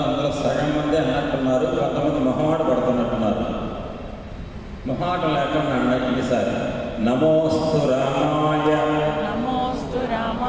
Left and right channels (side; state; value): both; identical; correlation 1.00